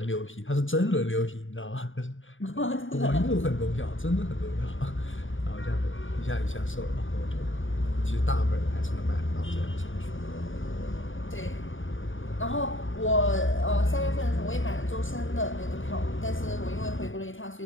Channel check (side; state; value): right; late; 0.57 ms